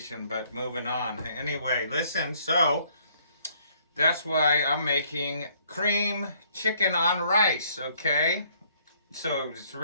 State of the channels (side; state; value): both; inverted; correlation -0.63